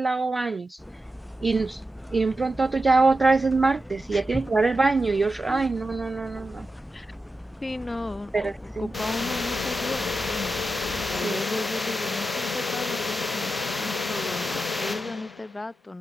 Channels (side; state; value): both; normal; correlation 0.90